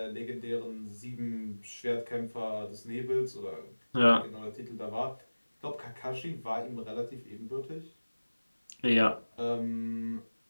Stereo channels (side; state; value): both; inverted; correlation -1.00